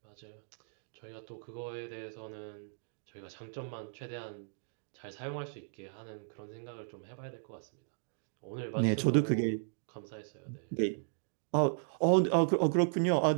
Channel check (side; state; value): left; silent; digital silence